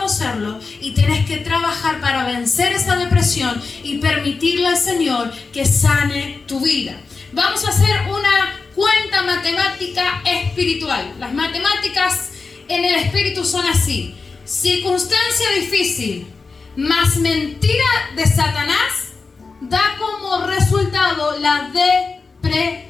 y tenés que trabajar para vencer esa depresión y permitirle al Señor que sane tu vida. Vamos a hacer una cuenta matemática espiritual. Las matemáticas en el espíritu son así: circunstancia difícil más mentira de Satanás da como resultado la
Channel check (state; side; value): quieter; right; 4.4 dB